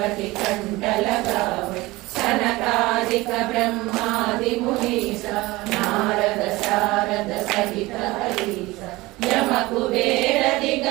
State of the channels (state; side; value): quieter; left; 20.6 dB